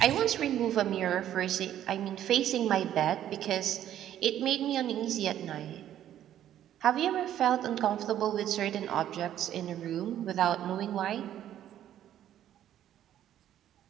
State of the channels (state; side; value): quieter; left; 11.4 dB